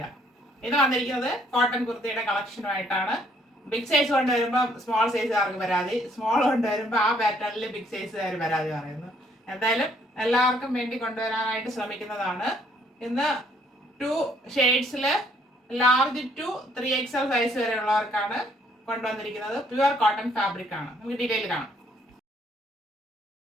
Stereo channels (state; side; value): normal; both; correlation 0.66